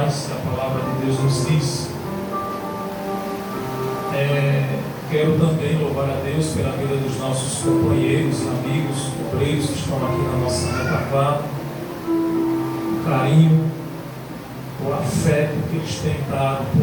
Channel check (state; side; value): identical; both; correlation 1.00